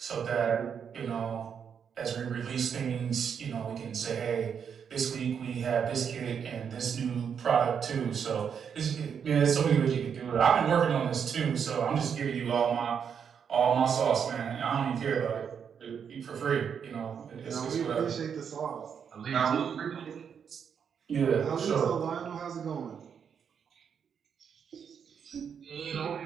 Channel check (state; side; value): quieter; left; 7.3 dB